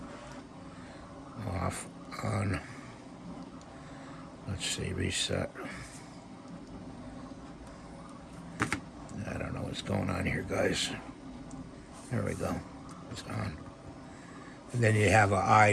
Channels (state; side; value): identical; both; correlation 1.00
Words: Off, on. Let's see, reset. I don't know what's going on here, guys. There we go. It's on. And then you have